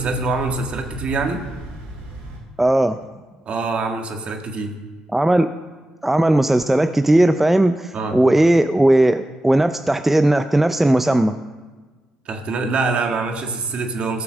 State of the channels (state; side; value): normal; both; correlation 0.91